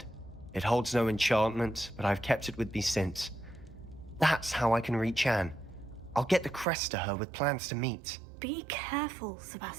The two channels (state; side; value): drops out; left; at 6.7 s